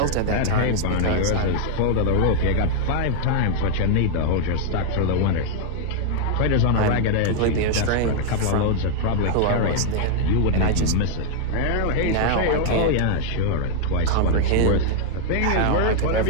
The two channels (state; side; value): different; both; correlation 0.00